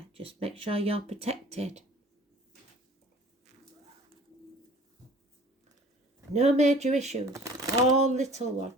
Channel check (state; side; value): normal; both; correlation 0.47